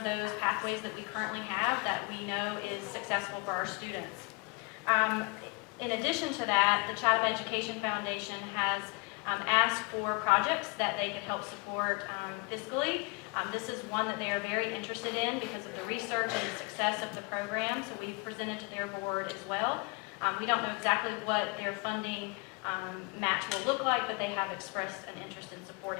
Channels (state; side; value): quieter; right; 28.8 dB